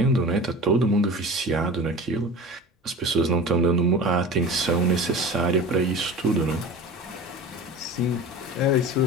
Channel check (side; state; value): both; normal; correlation 0.35